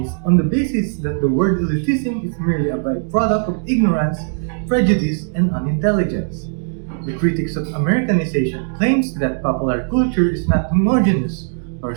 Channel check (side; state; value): left; silent; digital silence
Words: on the basis that the word elitism is merely a byproduct of ignorance, prejudice, and unintelligence. The critics of Americanization claims that popular culture is not homogeneous or